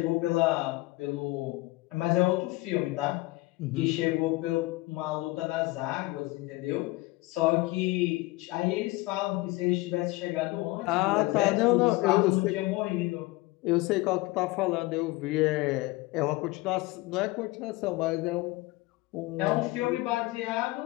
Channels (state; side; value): quieter; right; 20.9 dB